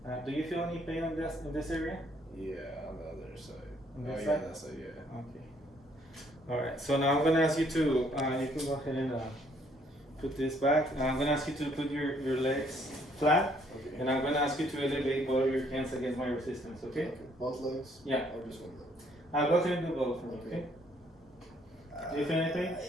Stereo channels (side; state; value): both; normal; correlation 0.66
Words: Do you feel any pain in this area? Yeah, on the other side. On Oh this yeah, side? that side, yeah. Okay. Alright, so now I'm gonna ask you to, you can go ahead and put this back. I'm gonna ask you to put your legs flat. Okay. And I'm gonna ask you to elevate both of your hands against my resistance, okay? Both legs? Yeah. Or just one leg? I'll go ahead and do both for me, okay? Do you feel anything?